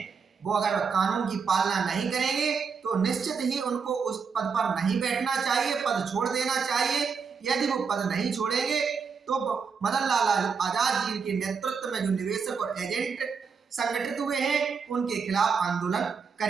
वो अगर कानून की पालना नहीं करेंगे तो निश्चित ही उनको उस पद पर नहीं बैठना चाहिए, पद छोड़ देना चाहिए। यदि वो पद नहीं छोड़ेंगे तो मदन लाल आजाद जी के नेतृत्व में जो निवेशक और एजेंट संगठित हुए हैं उनके खिलाफ आंदोलन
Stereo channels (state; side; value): quieter; left; 5.8 dB